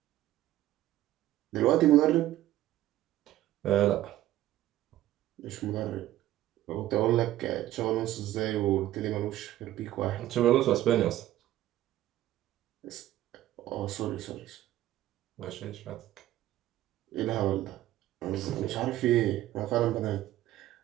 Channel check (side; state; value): left; quieter; 14.2 dB